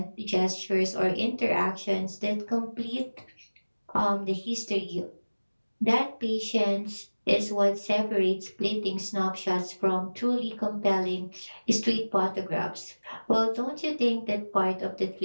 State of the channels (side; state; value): both; inverted; correlation -1.00